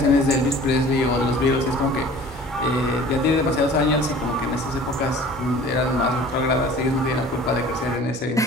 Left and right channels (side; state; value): both; normal; correlation 0.46